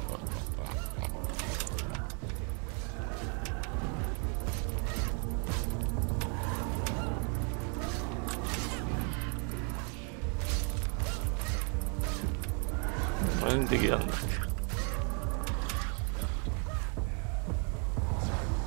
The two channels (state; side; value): quieter; left; 38.4 dB